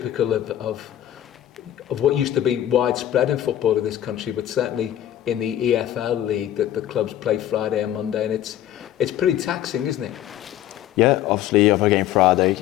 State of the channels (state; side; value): quieter; right; 12.1 dB